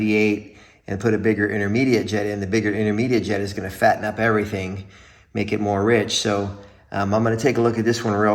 and put a bigger intermediate jet in. The bigger intermediate jet is gonna fatten up everything, make it more rich. So I'm gonna take a look at this one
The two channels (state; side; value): identical; both; correlation 1.00